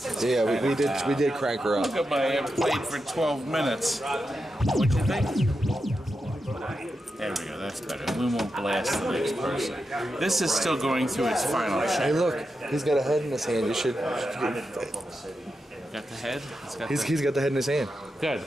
Yeah, we did crank her up. Look at my played for 12 minutes. What'd you think? There we go, that's better. We won't blast the next person. This is still going through its final check. Hey, look, he's got a head in his hand. You should. Got the head? He's got the head in his hand. Good.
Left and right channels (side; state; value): both; normal; correlation 0.88